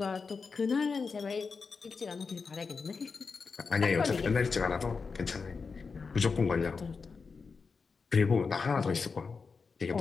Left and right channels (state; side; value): quieter; right; 4.9 dB